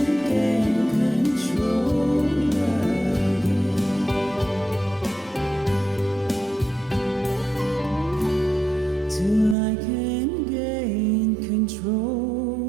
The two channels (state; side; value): drops out; left; at 9.6 s